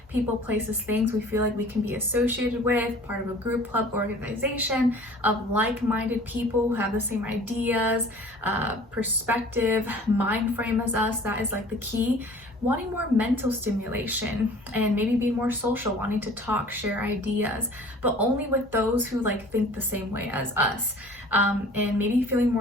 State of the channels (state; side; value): normal; both; correlation 0.47